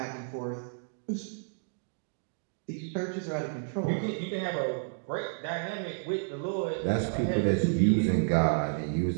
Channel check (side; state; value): left; silent; digital silence